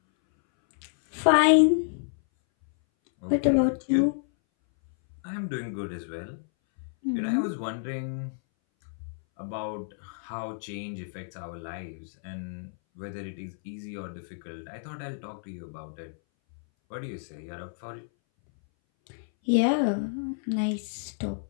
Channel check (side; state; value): right; silent; 58 dB below the other